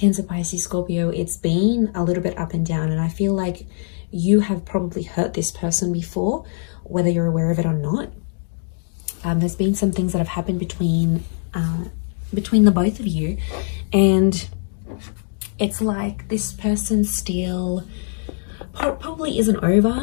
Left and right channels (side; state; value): right; silent; digital silence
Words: Pisces, Scorpio, it's been a little bit up and down, and I feel like you have probably hurt this person before, whether you're aware of it or not. There's been some things that have happened between the both of you, and it's like this person still probably isn't